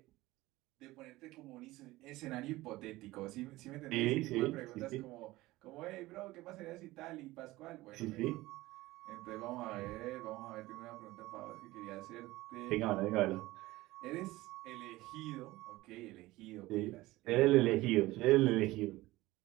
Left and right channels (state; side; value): quieter; left; 18.7 dB